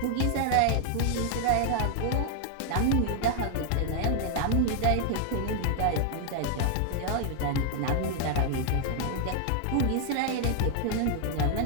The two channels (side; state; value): both; different; correlation 0.00